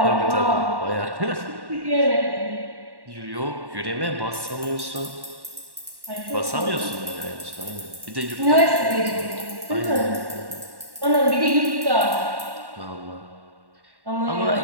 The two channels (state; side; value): late; left; 1.1 ms